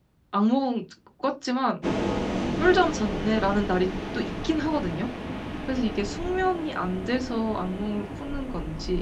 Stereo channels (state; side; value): identical; both; correlation 1.00